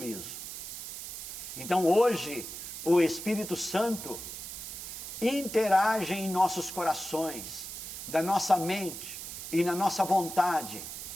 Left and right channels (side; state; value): right; noise; hiss, 8 dB below the sound